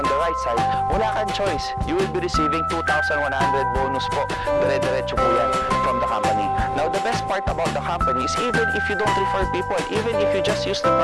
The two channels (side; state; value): both; identical; correlation 1.00